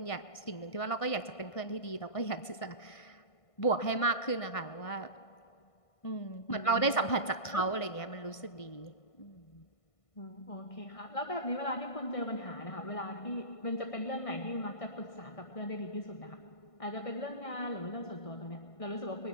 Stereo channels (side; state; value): right; late; 1.5 ms